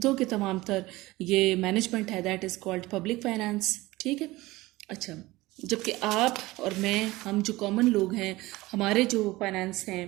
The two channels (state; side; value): quieter; left; 19.5 dB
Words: के तमाम तर ये मैनेजमेंट है that is called public finance. ठीक है। अच्छा, जबकि आप और मैं, हम जो कॉमन लोग हैं, हमारे जो फाइनेंस हैं,